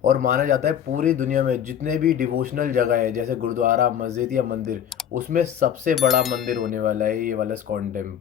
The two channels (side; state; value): right; quieter; 9.3 dB